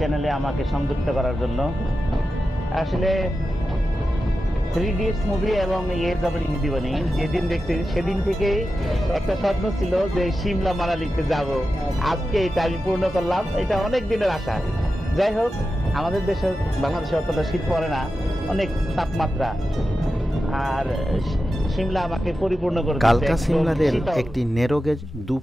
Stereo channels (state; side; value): normal; both; correlation 0.91